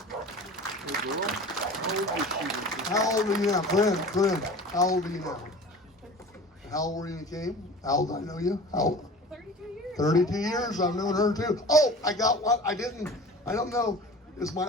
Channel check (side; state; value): both; normal; correlation 0.39